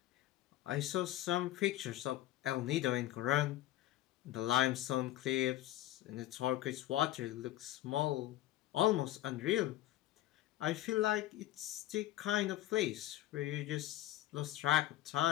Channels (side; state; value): right; quieter; 14.7 dB